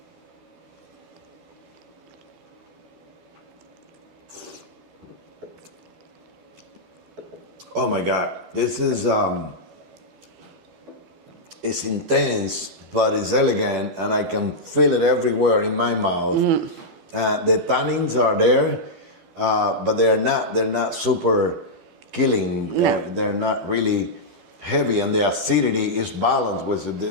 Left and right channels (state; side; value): late; left; 12 ms